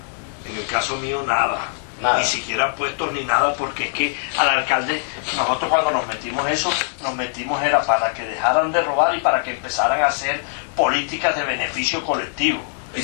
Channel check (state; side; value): silent; right; digital silence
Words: En el caso mío, nada. Nada. Ni siquiera puestos ni nada, porque es que al alcalde, nosotros cuando nos metimos eso, nos metimos era para que dejaran de robar y para que empezaran a hacer políticas de beneficio colectivo. ¿Y